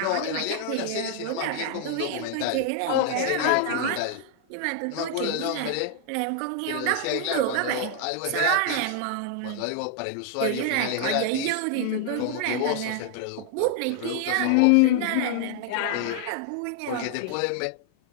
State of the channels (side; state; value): both; different; correlation 0.00